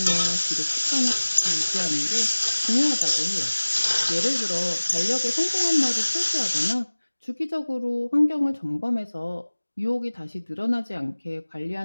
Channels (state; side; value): inverted; both; correlation -1.00